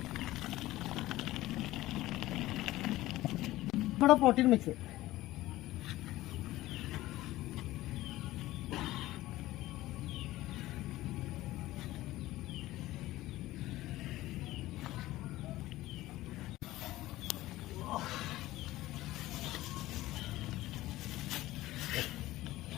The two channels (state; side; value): quieter; right; 16.7 dB